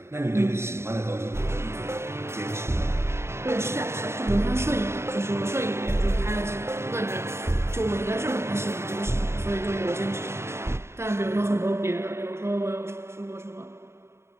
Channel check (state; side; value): late; left; 0.13 ms